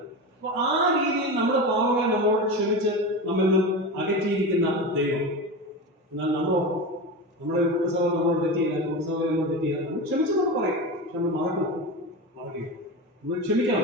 അപ്പൊ ആ രീതിയിൽ നമ്മുടെ പാവങ്ങളെ നമ്മളോട് ക്ഷമിച്ച് നമ്മിൽ നിന്നും അകറ്റിയിരിക്കുന്ന ദൈവം. എന്നാൽ നമ്മുടെ കുടുംബസഭ നമ്മളോട് തെറ്റിയില്ല, കുടുംബസഭ നമ്മൾ തെറ്റിയില്ല, നമ്മൾ ക്ഷമിച്ചെന്നൊക്കെ പറയും. പക്ഷെ നമ്മൾ മറക്കുക, നമ്മൾ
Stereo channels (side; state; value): both; normal; correlation 0.24